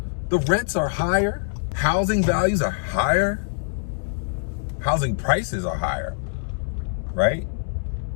The rents are higher. Housing values are higher. Housing prices are higher, right?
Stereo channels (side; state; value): right; silent; digital silence